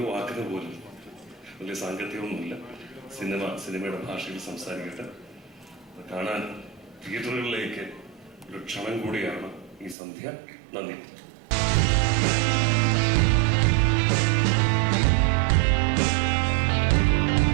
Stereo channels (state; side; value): drops out; left; at 10.0 s